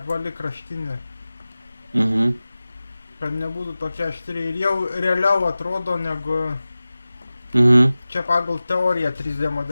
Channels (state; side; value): inverted; both; correlation -0.96